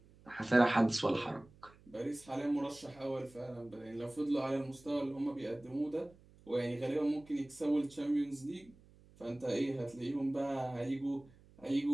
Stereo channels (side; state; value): right; noise; hum, 25 dB below the sound